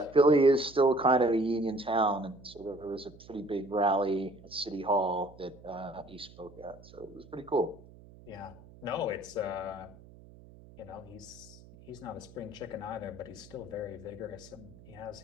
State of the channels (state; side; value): noise; right; hum, 21 dB below the sound